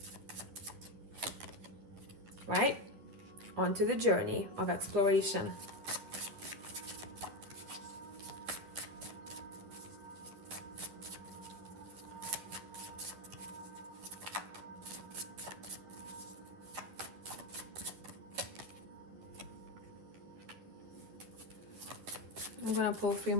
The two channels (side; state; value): left; late; 10 ms